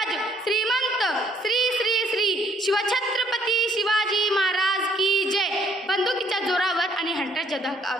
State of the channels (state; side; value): normal; both; correlation 0.64